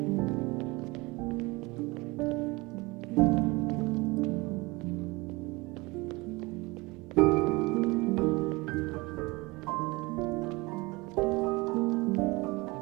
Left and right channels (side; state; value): left; quieter; 24.0 dB